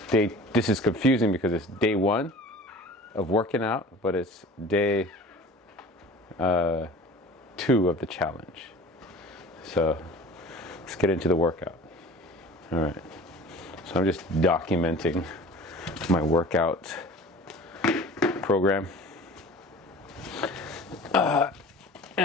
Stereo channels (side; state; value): both; normal; correlation 0.42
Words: this is confusing because it's day 1 of working out, but it's day 2 of the challenge. So let's get into the workout. All right, so I'm just documenting my workout program.